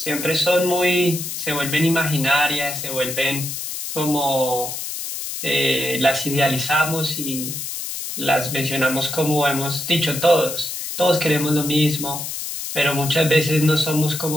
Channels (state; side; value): noise; left; hiss, 6 dB below the sound